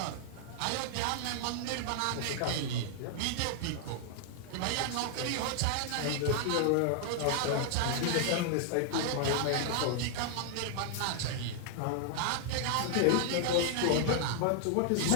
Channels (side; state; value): both; different; correlation -0.01